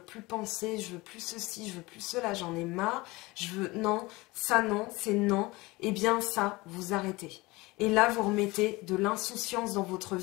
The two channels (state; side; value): quieter; right; 22.2 dB